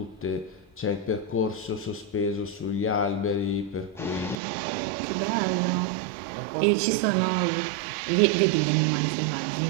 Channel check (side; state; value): left; drops out; at 4.4 s